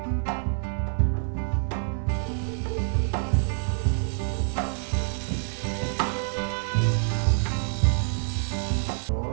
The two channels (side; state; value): left; silent; 57 dB below the other